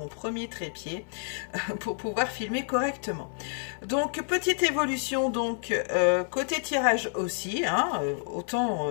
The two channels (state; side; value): silent; right; 59 dB below the other